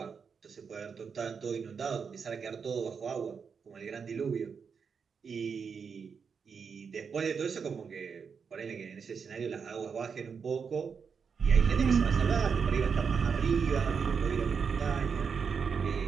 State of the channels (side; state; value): left; quieter; 6.1 dB